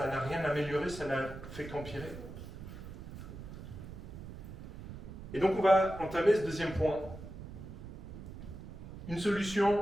n'a rien amélioré, ça n'a fait qu'empirer? Et donc on va entamer ce deuxième point. Une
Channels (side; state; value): right; noise; rumble, 12 dB below the sound